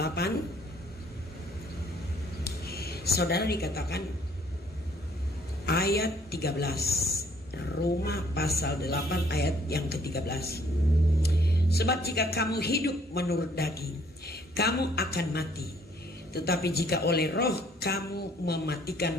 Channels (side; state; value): both; normal; correlation 0.63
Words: Saudara, dikatakan ayat 13. Roma pasal 8 ayat yang ke-13. Sebab jika kamu hidup menurut daging, kamu akan mati. Tetapi jika oleh roh kamu mematikan